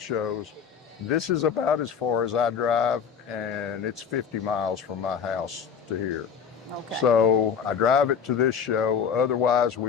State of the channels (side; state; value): right; quieter; 7.0 dB